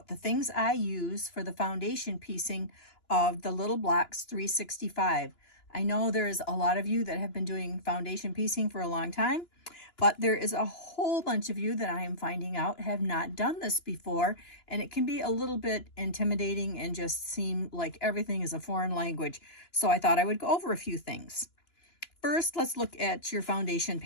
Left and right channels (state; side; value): late; right; 2.9 ms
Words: the things I use for the foundation piecing of the Little Blocks 365. I know there's a lot of you that have been doing foundation piecing for a long time, but there is a whole bunch of you that I am finding out have not done this before, and it can be a little bit intimidating and just seem like everything is a foreign language. So I thought I would go over a few things. First, let's look at your foundation